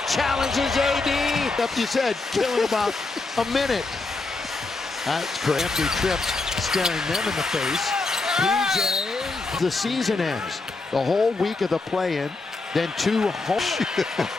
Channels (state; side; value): quieter; right; 3.6 dB